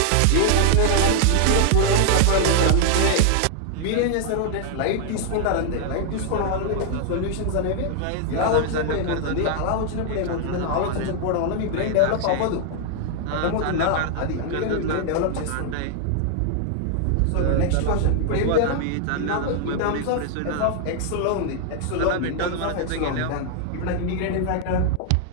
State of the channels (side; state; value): both; different; correlation 0.00